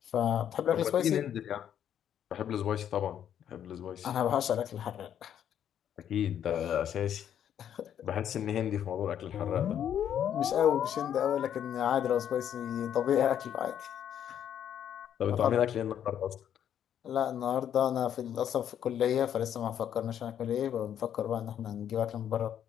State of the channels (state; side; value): quieter; right; 9.7 dB